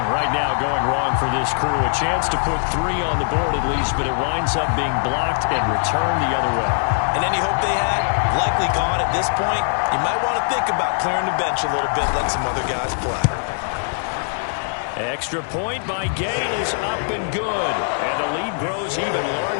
right now going wrong for this crew. A chance to put 3 on the board at least, but it winds up being blocked and returned the other way. And any hope they had, likely gone at this point. You might want to think about clearing the bench a little bit, let some other guys play. Extra point by Gay is up and good. And the lead grows even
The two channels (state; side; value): silent; right; digital silence